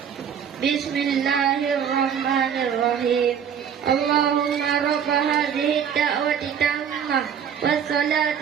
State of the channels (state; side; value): quieter; left; 8.1 dB